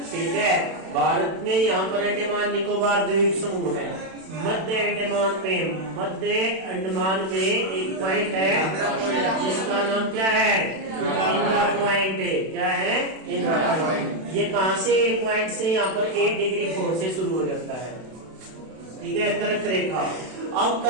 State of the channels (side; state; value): left; late; 32 ms